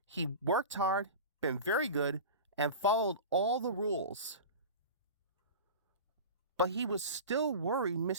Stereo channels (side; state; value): both; inverted; correlation -0.31